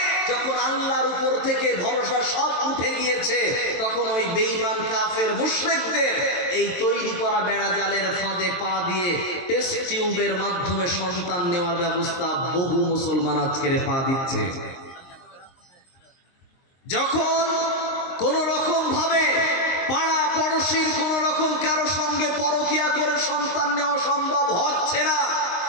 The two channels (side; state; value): right; late; 22 ms